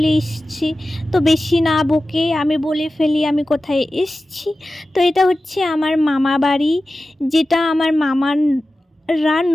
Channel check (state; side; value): normal; both; correlation 0.94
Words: এসেছি। তো বেশি না বকে আমি বলে ফেলি আমি কোথায় এসেছি। তো এটা হচ্ছে আমার মামা বাড়ি, যেটা আমার মামার